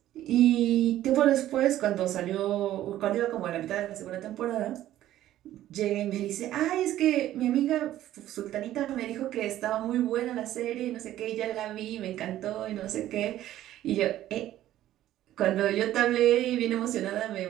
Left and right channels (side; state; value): left; quieter; 13.3 dB